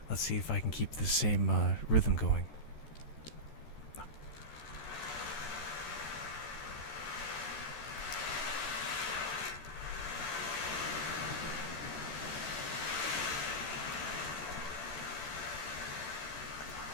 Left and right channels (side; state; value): right; late; 14 ms